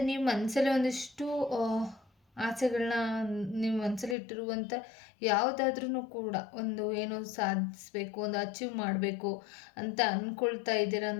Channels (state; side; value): drops out; right; at 4.2 s